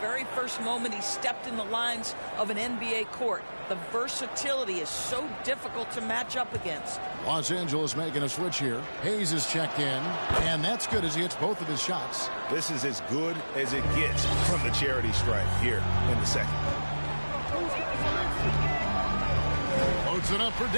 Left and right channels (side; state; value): both; inverted; correlation -1.00